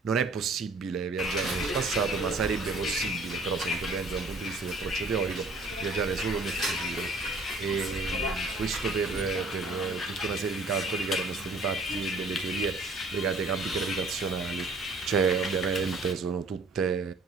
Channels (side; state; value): left; quieter; 3.1 dB